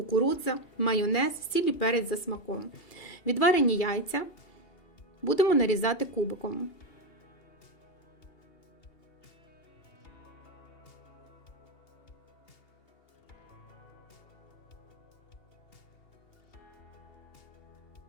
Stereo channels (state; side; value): late; right; 2.8 ms